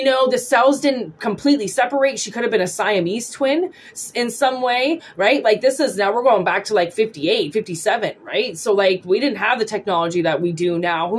know, the cells didn't completely separate. She could have been a Siamese twin in some way, right? Like, this is, now we're going back to like 58, 57, right? So like, we didn't have the technology that we do now.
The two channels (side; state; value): both; identical; correlation 1.00